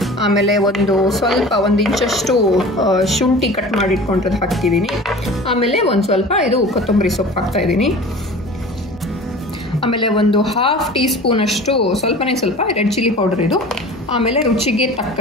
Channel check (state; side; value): normal; both; correlation 0.40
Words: ಆಮೇಲೆ ಒಂದು ಇಂಚಷ್ಟು ಶುಂಠಿ ಕಟ್ ಮಾಡಿ ಇಟ್ಕೊಂಡಿರೋದು ಹಾಕ್ತಿದ್ದೀನಿ. ಆಮೇಲೆ ಒಂದು ಸ್ವಲ್ಪ ಇದು ಕೊತ್ತಂಬರಿ ಸೊಪ್ಪು ಹಾಕ್ತಾ ಇದ್ದೀನಿ. ಆಮೇಲೆ ಒಂದು 1/2 ಟೀ ಸ್ಪೂನ್ ಅಷ್ಟು ಸ್ವಲ್ಪ ರೆಡ್ ಚಿಲ್ಲಿ ಪೌಡರ್ ಇದು. ಆಮೇಲೆ ರುಚಿಗೆ